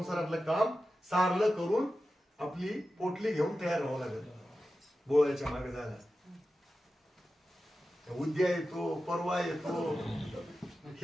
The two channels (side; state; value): both; normal; correlation 0.93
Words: काम सारलं करून आपली पोटली घेऊन तयार व्हावं लागेल बोळ्याच्या मागे जायला. उद्या येतो, परवा येतो,